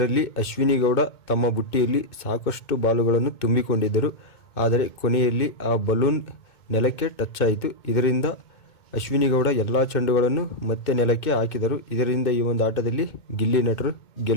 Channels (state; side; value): late; right; 2.2 ms